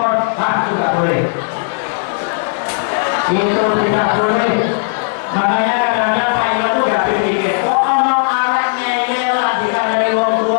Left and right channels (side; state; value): right; silent; 61 dB below the other